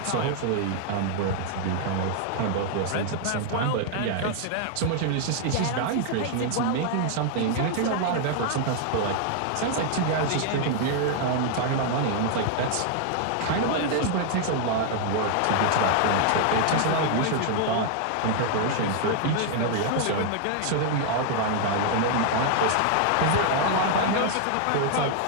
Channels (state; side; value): different; both; correlation 0.00